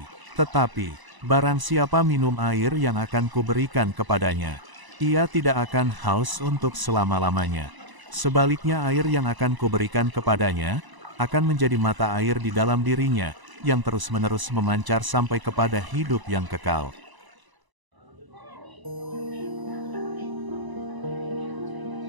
Tetapi, barang siapa minum air yang akan kuberikan kepadanya, ia tidak akan haus untuk selama-lamanya. Sebaliknya air yang akan kuberikan kepadanya, akan menjadi mata air di dalam dirinya, yang terus-menerus memancar sampai kepada hidup yang kekal."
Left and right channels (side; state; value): left; late; 1.0 ms